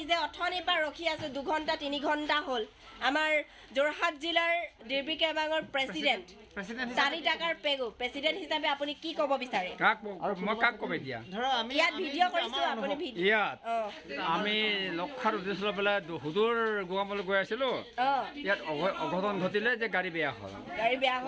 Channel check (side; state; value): both; identical; correlation 1.00